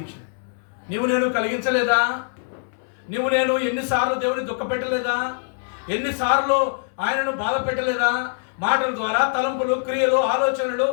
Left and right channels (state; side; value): silent; right; 63 dB below the other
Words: నేను కలిగించలేదా? నేను ఎన్నిసార్లు దేవుని దుఃఖపెట్టలేదా? ఎన్నిసార్లు ఆయనను బాధ పెట్టలేదా? మాటల ద్వారా, తలంపులు, క్రియలు, ఆలోచనలు,